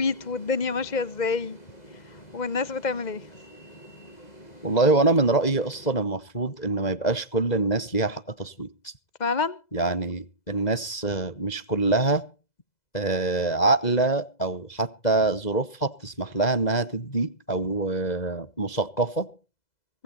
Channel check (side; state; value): right; late; 2.0 ms